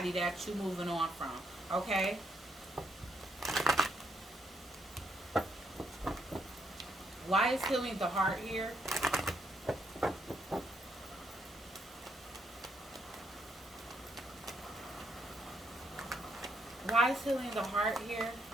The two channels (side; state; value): both; normal; correlation 0.75